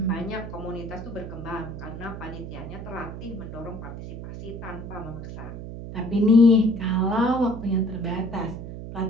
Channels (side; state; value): right; noise; hum, 9 dB below the sound